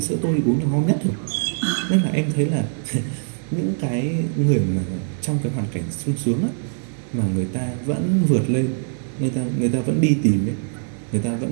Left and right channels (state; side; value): silent; left; digital silence